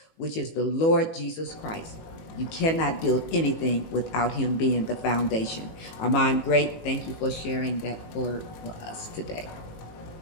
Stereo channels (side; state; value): right; late; 18 ms